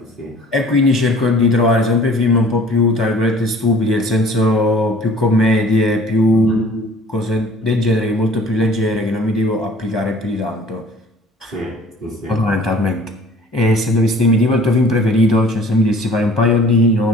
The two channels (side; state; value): both; normal; correlation 0.50